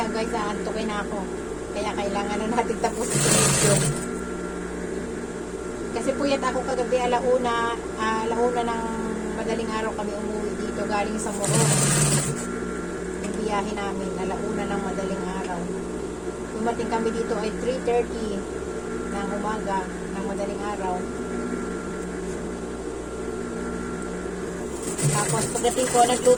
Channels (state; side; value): identical; both; correlation 1.00